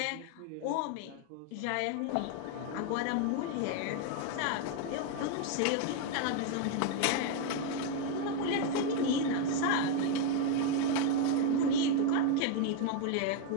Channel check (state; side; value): different; both; correlation 0.01